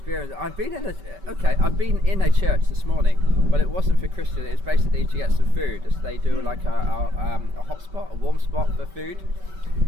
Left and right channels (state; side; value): late; left; 5.2 ms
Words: I've been in a church this morning, but it wasn't for Christian. It was basically to get some food. So they do like a hot spot, a warm spot for food,